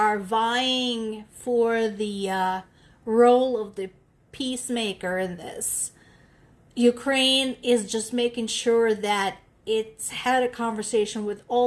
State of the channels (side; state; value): both; identical; correlation 1.00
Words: vying for the role of the peacemaker in this, Ukraine is just making sure that it's had a conversation with